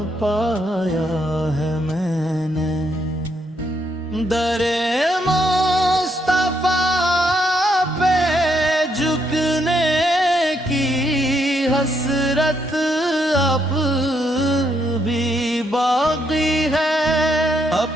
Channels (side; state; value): both; normal; correlation 0.75